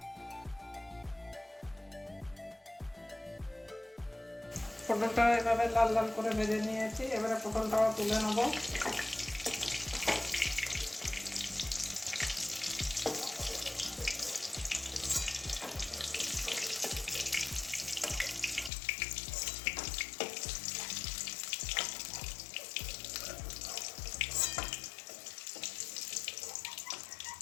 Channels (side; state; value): right; drops out; at 18.7 s